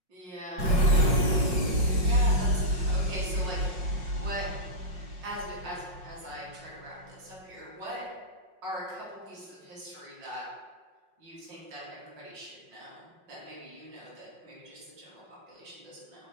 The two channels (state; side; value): late; left; 5.5 ms